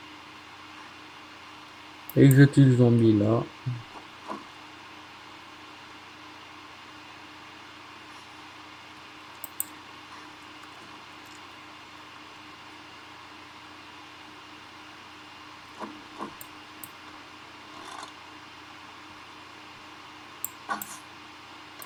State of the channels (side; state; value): both; identical; correlation 1.00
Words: Et que je tue le zombie là.